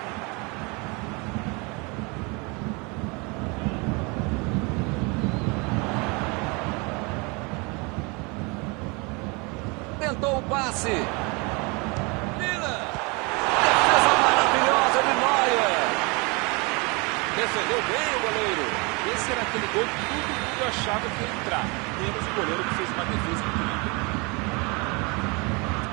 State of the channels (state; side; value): quieter; left; 29.0 dB